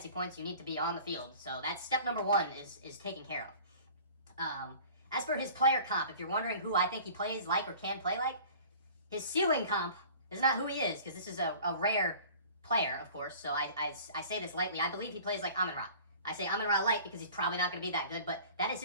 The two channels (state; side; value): inverted; both; correlation -0.45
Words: points, you need to be on the field. So that's step number 1 is taken care of. As for his player comp, if you're wondering who I think he plays like or can play like, his ceiling comp is not who he is, because this is a rare player, of course, so I say this lightly. I believe he plays like Amon-Ra. I say Amon-Ra light because he's probably not going to be that good, but that is